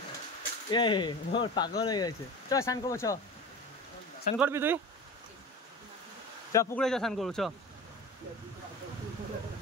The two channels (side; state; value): both; normal; correlation 0.33